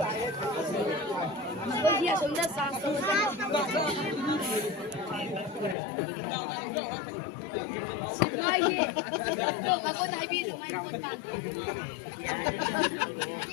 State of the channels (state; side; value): drops out; right; at 5.8 s